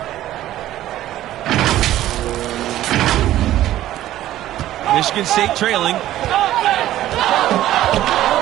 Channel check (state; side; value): quieter; left; 13.8 dB